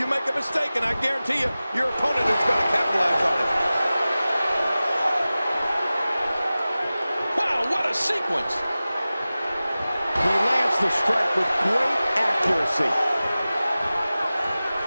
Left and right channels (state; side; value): inverted; both; correlation -0.97